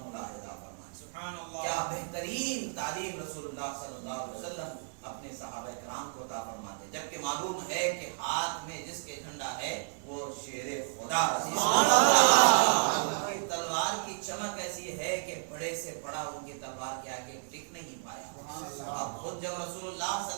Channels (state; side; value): silent; left; digital silence